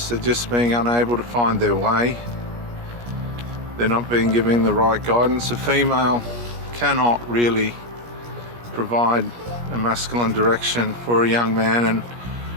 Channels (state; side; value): late; left; 17 ms